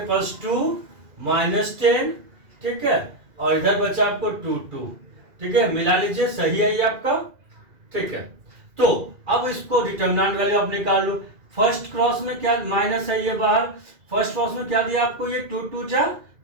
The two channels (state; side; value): late; left; 2.3 ms